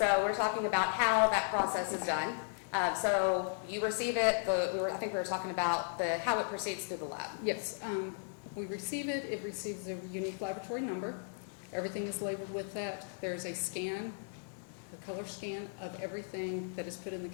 we're talking about how that process is done. So you receive it, I think we were talking about how it proceeds through the lab. Yes, we receive it, it receives a unique laboratory number. Everything is labeled with that. There's a scan, a color scan of everything that is put in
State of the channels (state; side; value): silent; right; digital silence